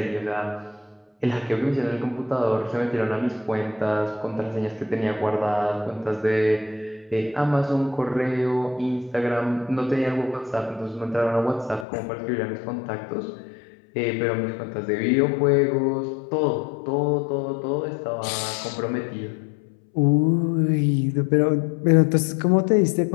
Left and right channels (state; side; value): drops out; right; at 11.9 s